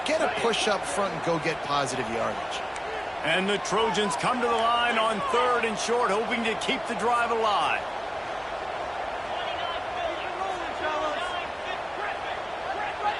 get a push up front, and go get positive yardage. And the Trojans come to the line on 3rd and short, hoping to keep the drive alive.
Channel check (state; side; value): identical; both; correlation 1.00